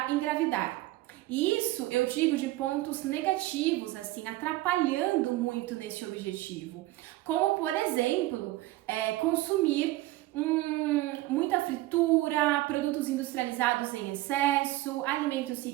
engravidar. E isso eu digo de pontos negativos, assim, atrapalhando muito nesse objetivo. Como, por exemplo, consumir muita fritura, produtos industrializados em excesso, alimentos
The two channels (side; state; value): left; quieter; 17.9 dB